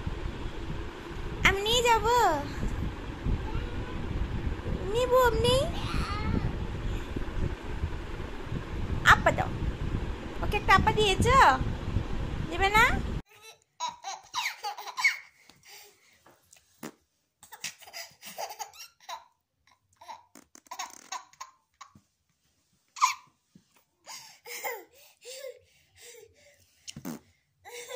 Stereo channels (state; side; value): identical; both; correlation 1.00